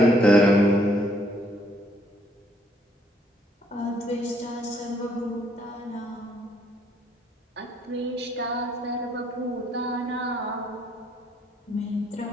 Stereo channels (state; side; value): normal; both; correlation 0.67